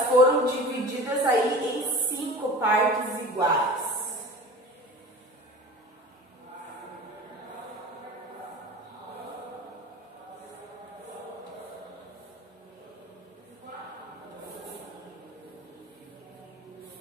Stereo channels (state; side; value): normal; both; correlation 0.38